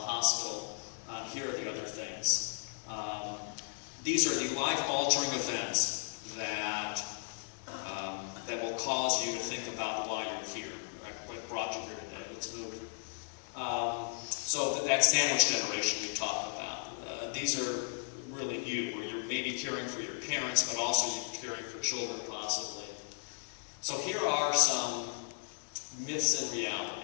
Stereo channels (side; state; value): right; silent; digital silence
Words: Here are the other things. These are the life-altering events that will cause you to think about why you're here, right? What brought you here today. Let's move. So that sandwich generation we talked about. These are really you, where you're maybe caring for your parents, but also you're caring for children possibly. So here are some myths and